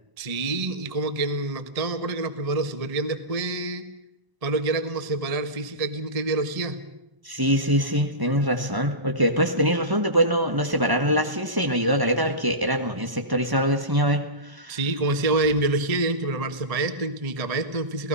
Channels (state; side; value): late; left; 1.0 ms